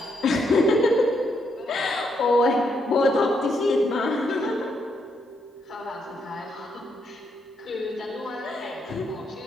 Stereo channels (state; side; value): normal; both; correlation 0.77